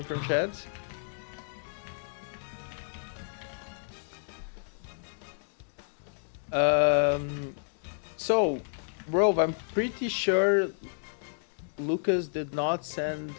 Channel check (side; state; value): right; silent; digital silence